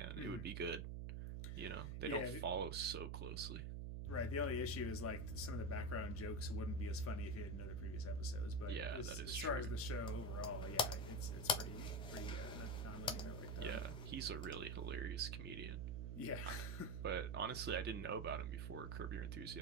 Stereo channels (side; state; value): right; noise; hum, 2 dB below the sound